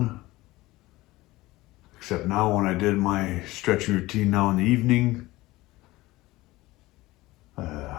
Except now when I did my stretching routine now in the evening, I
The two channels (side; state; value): right; quieter; 19.1 dB